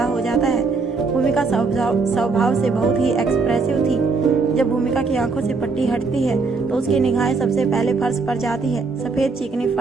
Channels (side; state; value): left; quieter; 4.2 dB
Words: हो जाता है। भूमिका स्वभाव से बहुत ही एक्सप्रेसिव थी। जब भूमिका की आंखों से पट्टी हटती है तो उसकी निगाहें सबसे पहले फर्श पर जाती है। सफेद चिकनी